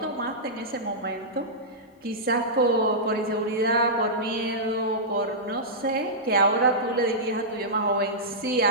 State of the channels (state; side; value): normal; both; correlation -0.13